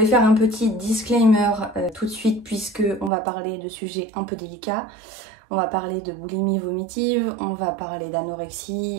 vais faire un petit disclaimer tout de suite puisque on va parler de sujets un peu délicats. On va parler de boulimie vomitive, on va parler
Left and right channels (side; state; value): left; drops out; at 3.1 s